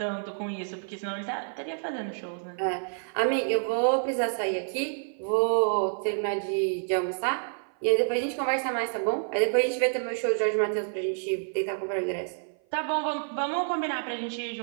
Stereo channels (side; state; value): left; silent; 55 dB below the other